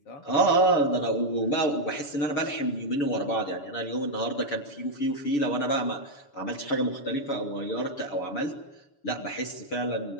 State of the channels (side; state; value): right; late; 7.0 ms